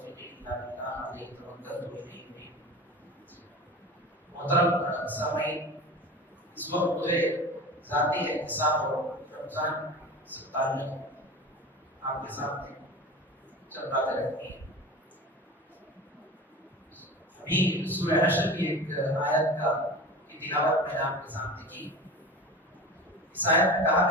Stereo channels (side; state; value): both; normal; correlation 0.33